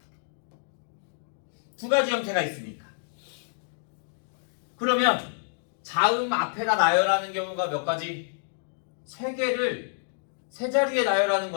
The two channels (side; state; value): right; silent; digital silence